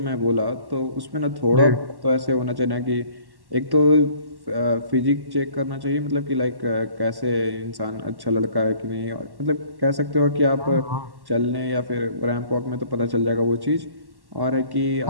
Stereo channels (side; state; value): left; late; 1.1 ms